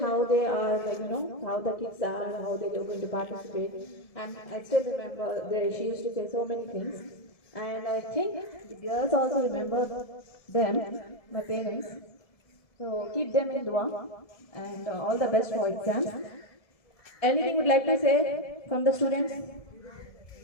they are, like, how the kids are, how they are going to participate. And I still remember she used to say so many things. And I think the girls also remember them, my parents. So keep them in dua, and all the best for exams. Anything would like to say from the students?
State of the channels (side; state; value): right; late; 1.7 ms